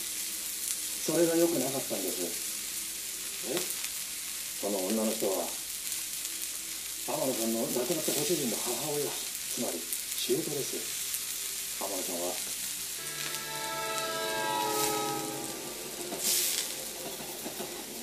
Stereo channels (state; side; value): identical; both; correlation 1.00